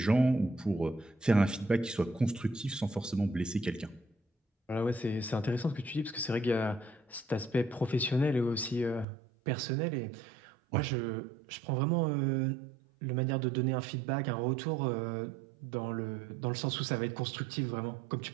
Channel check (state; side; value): drops out; left; at 9.1 s